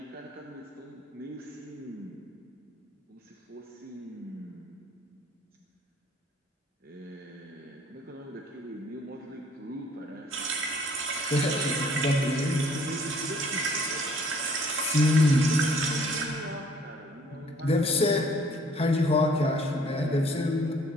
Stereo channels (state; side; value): normal; both; correlation 0.58